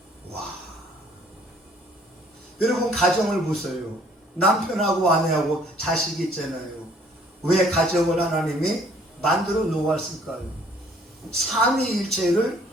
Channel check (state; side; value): normal; both; correlation 0.59